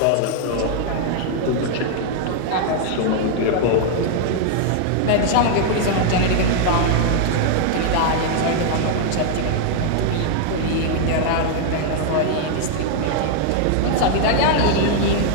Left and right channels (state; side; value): different; both; correlation 0.00